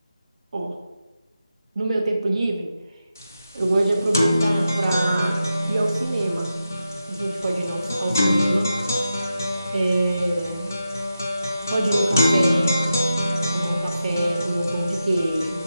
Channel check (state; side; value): inverted; both; correlation -0.89